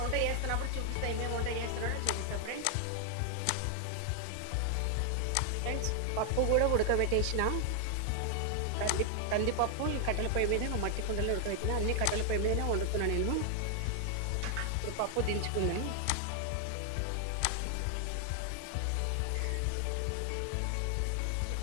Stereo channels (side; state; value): both; different; correlation 0.00